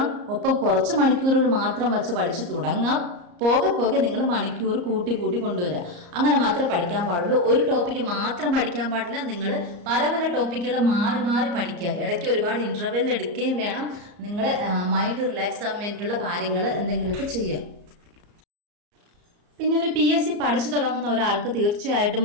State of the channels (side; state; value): left; late; 34 ms